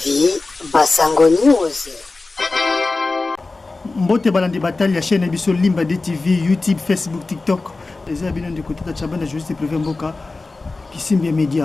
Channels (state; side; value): quieter; right; 3.5 dB